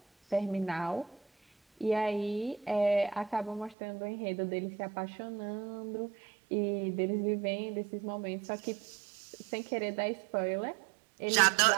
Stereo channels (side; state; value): left; drops out; at 3.8 s